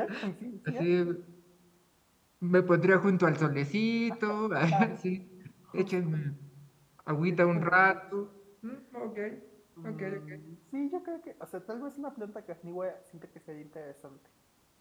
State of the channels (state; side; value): identical; both; correlation 1.00